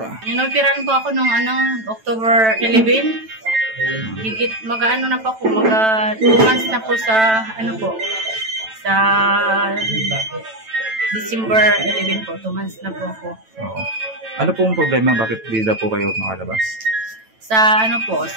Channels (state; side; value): late; left; 9.1 ms